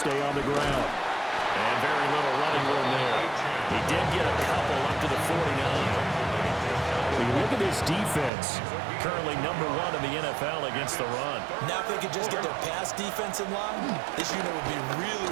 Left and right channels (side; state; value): left; drops out; at 8.3 s